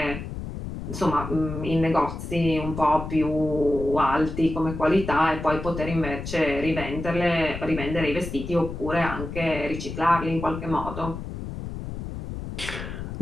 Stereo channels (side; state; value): left; noise; rumble, 7 dB below the sound